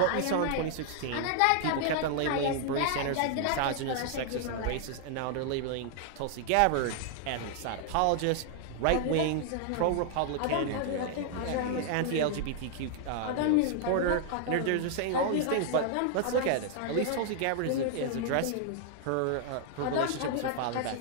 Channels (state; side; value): different; both; correlation 0.00